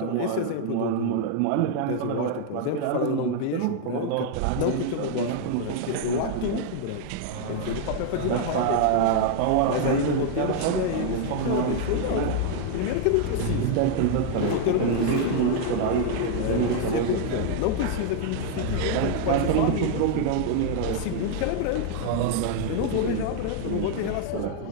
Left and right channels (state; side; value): different; both; correlation 0.00